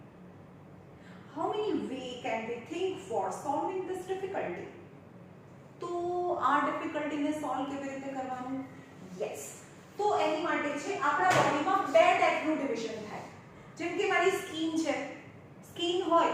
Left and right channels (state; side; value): identical; both; correlation 1.00